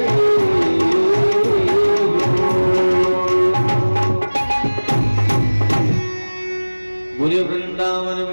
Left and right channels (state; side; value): inverted; both; correlation -1.00